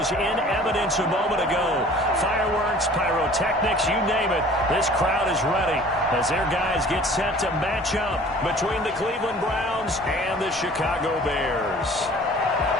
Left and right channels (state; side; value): normal; both; correlation 0.48